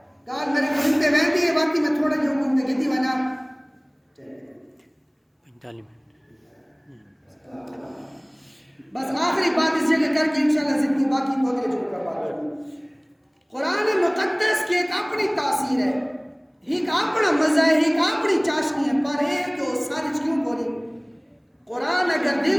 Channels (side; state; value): both; identical; correlation 1.00